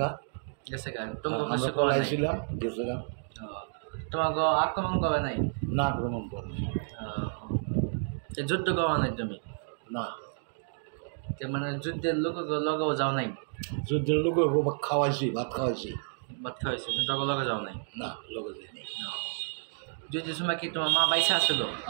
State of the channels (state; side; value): silent; left; digital silence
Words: গা। তোমাকে আইছিলাম গেছে গা। তোমাকে আক্রমণ করে নাই? না, আক্রমণ করেছে। যুদ্ধ করা নাই তুমি? না। মানে যুদ্ধের লগেও যাও নাই? যুদ্ধের লোক খাওয়াইছি, ভাত খাওয়াইছি। কিন্তু তখন লগে যাও নাই? না, লগে যাইনি। যুদ্ধের সময় কি তোমার মা বাইসা আসলো?